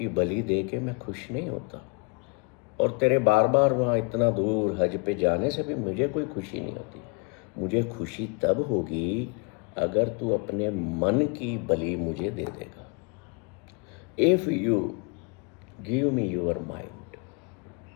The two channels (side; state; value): right; quieter; 33.2 dB